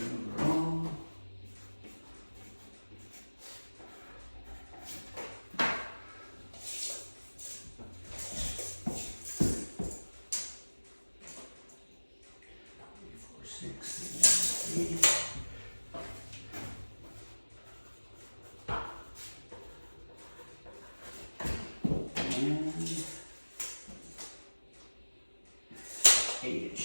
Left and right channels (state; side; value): inverted; both; correlation -1.00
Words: overall. And 8